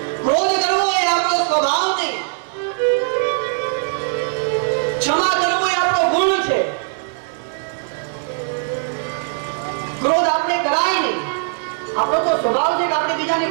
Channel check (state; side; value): silent; left; digital silence